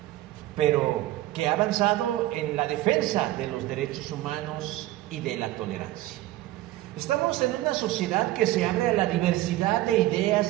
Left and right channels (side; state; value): left; quieter; 16.1 dB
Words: pero que ha avanzado en la defensa de los derechos humanos y de la tolerancia. Estamos en una sociedad que se abre a la diversidad de